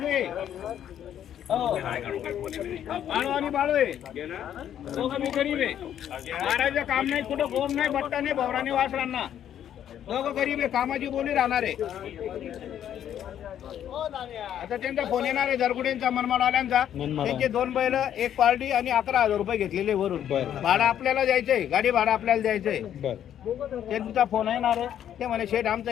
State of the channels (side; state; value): right; quieter; 10.2 dB